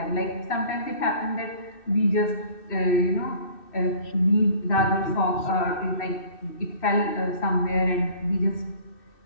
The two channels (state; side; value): late; right; 2.6 ms